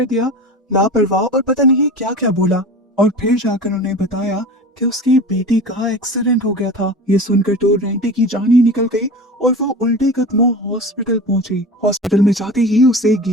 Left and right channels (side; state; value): both; normal; correlation 0.33